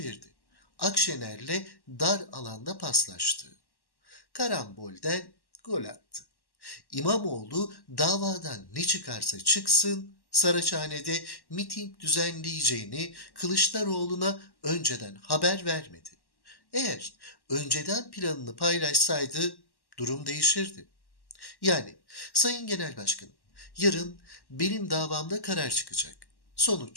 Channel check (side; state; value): right; late; 1.1 ms